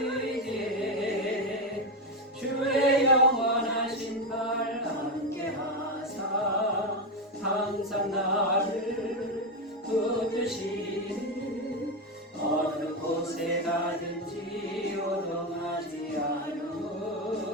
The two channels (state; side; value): normal; both; correlation 0.10